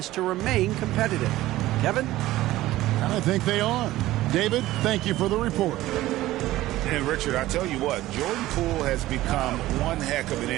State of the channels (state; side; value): quieter; left; 16.2 dB